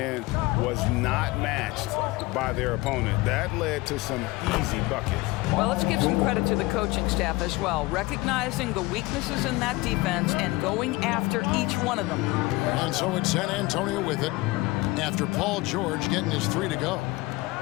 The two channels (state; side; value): quieter; right; 21.5 dB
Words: was not matched by their opponent. That led to some easy buckets. Well, let's give some credit to the coaching staff as well, recognizing the weaknesses in that defense and going after each one of them. And so it's San Antonio with it after Paul George getting his 3 to go.